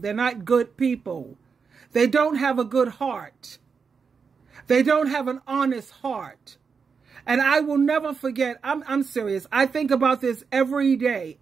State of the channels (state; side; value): quieter; left; 5.7 dB